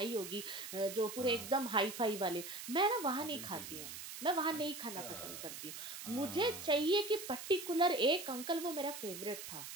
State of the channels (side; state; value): right; noise; hiss, 9 dB below the sound